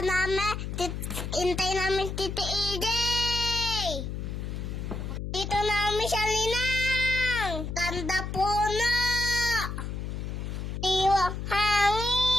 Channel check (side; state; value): left; noise; hum, 5 dB below the sound